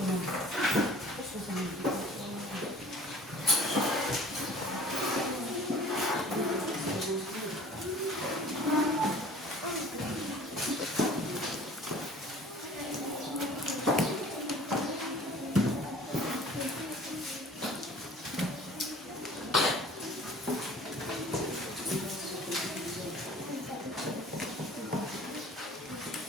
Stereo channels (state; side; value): normal; both; correlation 0.48